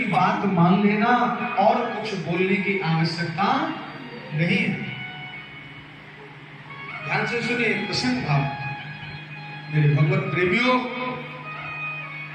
बात मान लेना और कुछ बोलने की आवश्यकता नहीं है। ध्यान से सुनिए प्रसन्न भाव। मेरे भगवत प्रेमियों,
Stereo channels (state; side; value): identical; both; correlation 1.00